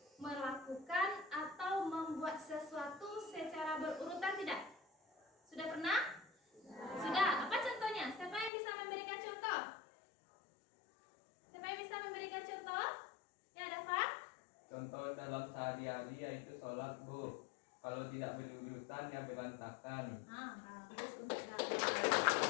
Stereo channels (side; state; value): right; drops out; at 8.5 s